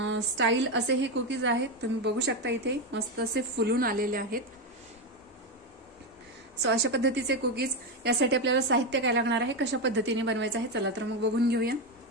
स्टाईल असे हे कुकीज आहेत। तुम्ही बघू शकता इथे मस्त असे फुलून आलेले आहेत। सो अशा पद्धतीचे कुकीज यासाठी आपल्याला साहित्य काय लागणार आहे, कशा पद्धतीने बनवायचं आहे, चला तर मग बघून घेऊया।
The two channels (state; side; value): normal; both; correlation 0.11